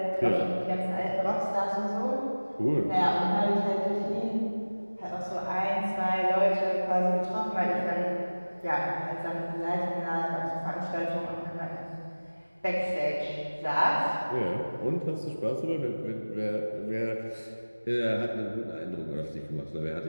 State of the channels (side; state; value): both; inverted; correlation -1.00